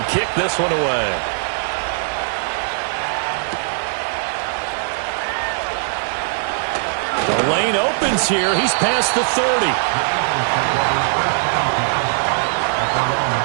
kick this one away. The lane opens here. He's past the 30.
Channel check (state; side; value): silent; left; 61 dB below the other